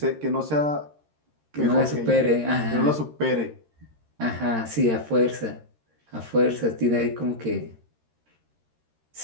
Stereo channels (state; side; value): late; left; 13 ms